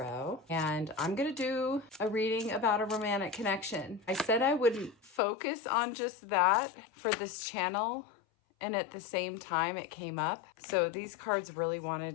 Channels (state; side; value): drops out; right; at 5.2 s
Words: and I'm gonna do a reading about a romantic connection. I said I wouldn't focus on just that for this channel, and at the same time it came up. So these cards really